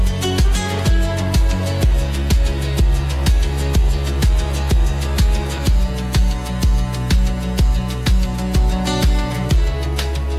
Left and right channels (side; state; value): both; identical; correlation 1.00